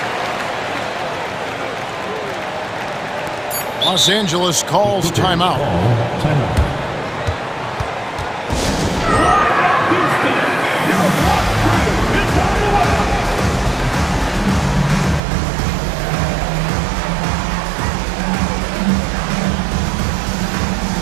Los Angeles calls timeout.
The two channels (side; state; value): left; drops out; at 15.2 s